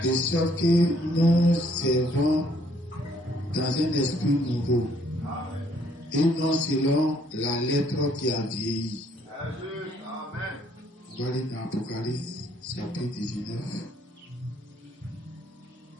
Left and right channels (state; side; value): normal; both; correlation 0.66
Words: de sorte que nous servons dans un esprit nouveau, et non selon la lettre qui a vieilli. On va lire dans Apocalypse chapitre 19.